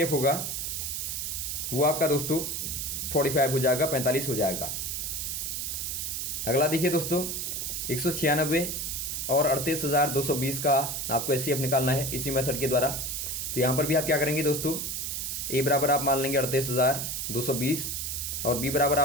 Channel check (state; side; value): noise; right; hiss, 3 dB below the sound